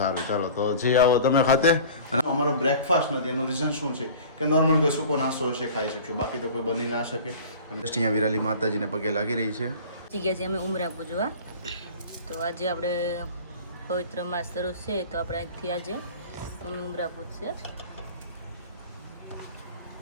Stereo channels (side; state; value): both; inverted; correlation -0.41